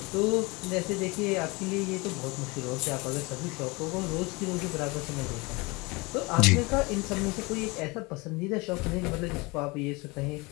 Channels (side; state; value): right; quieter; 25.7 dB